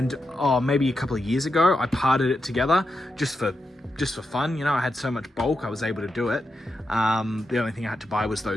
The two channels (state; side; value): normal; both; correlation 0.87